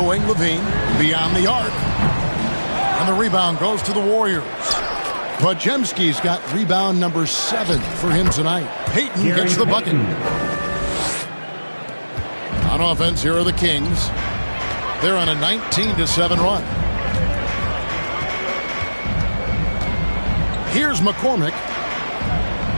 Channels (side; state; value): both; inverted; correlation -1.00